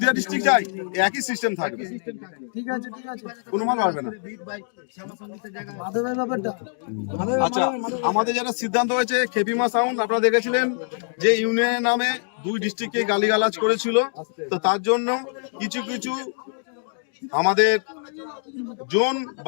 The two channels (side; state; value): right; silent; digital silence